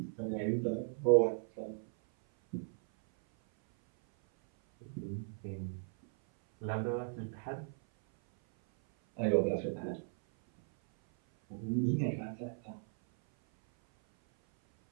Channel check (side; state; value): left; silent; 54 dB below the other